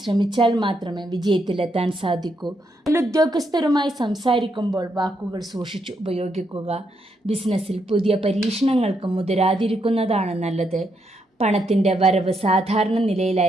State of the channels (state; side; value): normal; both; correlation 0.79